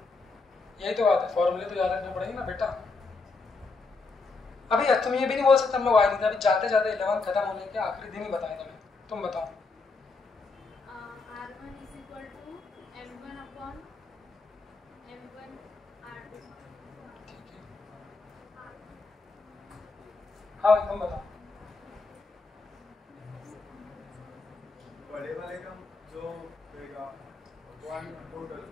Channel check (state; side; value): quieter; right; 4.0 dB